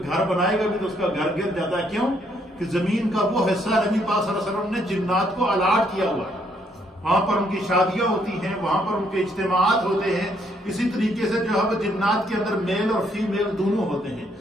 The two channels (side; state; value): both; normal; correlation 0.71